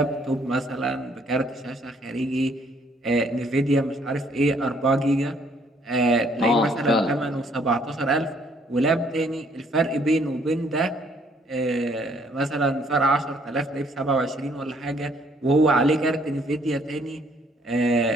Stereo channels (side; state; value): both; normal; correlation 0.65